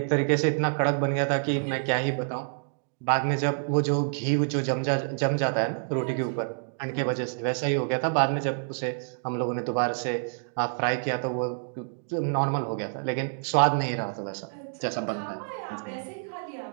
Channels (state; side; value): silent; left; digital silence